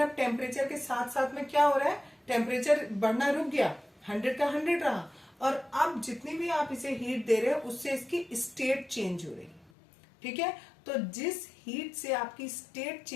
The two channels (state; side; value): drops out; right; at 9.7 s